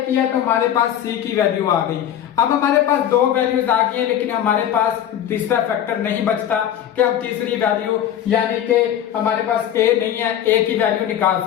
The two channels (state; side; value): quieter; right; 10.4 dB